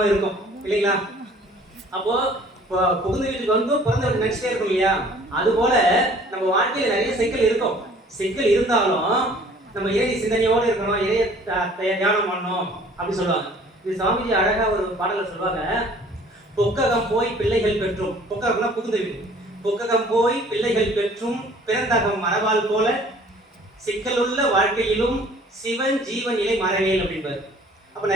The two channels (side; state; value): both; normal; correlation 0.53